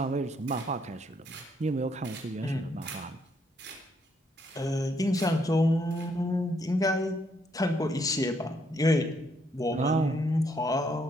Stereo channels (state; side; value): normal; both; correlation 0.72